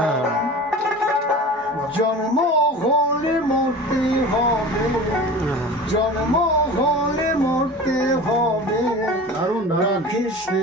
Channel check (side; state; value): both; normal; correlation 0.36